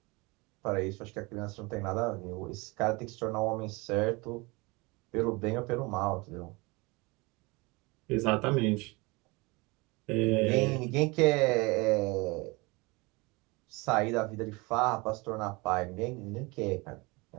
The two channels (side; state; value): left; quieter; 25.5 dB